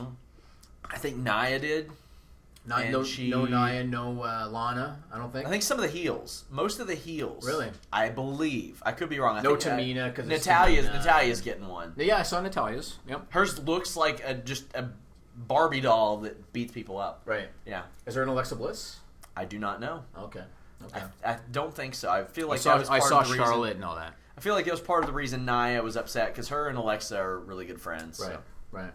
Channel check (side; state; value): both; identical; correlation 1.00